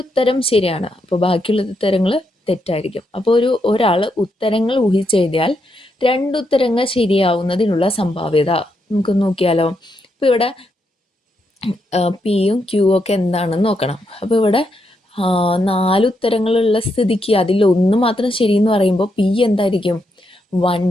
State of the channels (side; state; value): both; normal; correlation 0.81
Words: ഉത്തരം ശരിയാണ്, അപ്പോൾ ബാക്കിയുള്ള ഉത്തരങ്ങൾ തെറ്റായിരിക്കും. അപ്പോൾ ഒരാൾ ഉത്തരങ്ങൾ ഊഹിച്ചെഴുതിയാൽ 2 ഉത്തരങ്ങൾ ശരിയാവുന്നതിനുള്ള സംഭാവ്യത നമുക്ക് നോക്കിയാലോ. ഇപ്പോൾ ഇവിടെ Pയും Qയും ഒക്കെ എന്താണെന്ന് നോക്കണം. അപ്പോൾ ഇവിടെ 4 ഉത്തരങ്ങളുള്ള സ്ഥിതിക്ക് അതിലൊന്ന് മാത്രം ശരിയെന്ന് പറയുമ്പോൾ P എന്തായിരിക്കും?